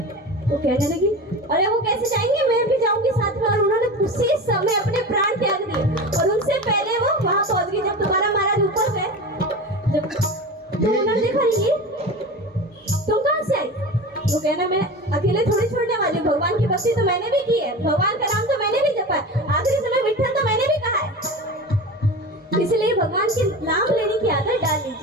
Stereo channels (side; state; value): both; normal; correlation 0.30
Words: वो कहने लगी अरे वो कैसे जाएंगे, मैं भी जाऊंगी साथ में। और उन्होंने उसी समय अपने प्राण त्याग दिए और उनसे पहले वो वहां पहुंच गई। जब तुकाराम महाराज ऊपर गए, जब तो उन्होंने देखा ये तुम कहां से आई, वो कहना मैं अकेले थोड़ी छोड़ने वाली, भगवान की भक्ति तो मैंने भी की है, भगवान का नाम तो मैंने भी जपा है, आखिरी समय विठल तो मैंने भी कहा है, इसलिए भगवान के नाम लेने की आदत डाल